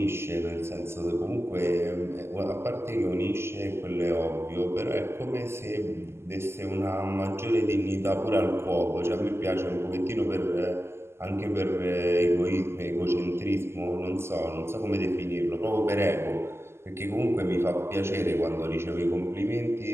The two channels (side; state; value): left; late; 0.12 ms